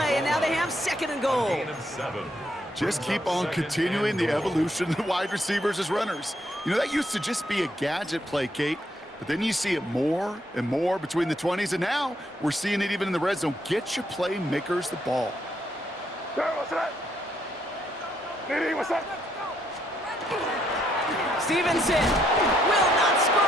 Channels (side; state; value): both; normal; correlation 0.73